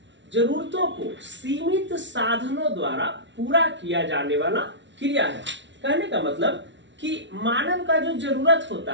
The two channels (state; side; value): late; left; 0.53 ms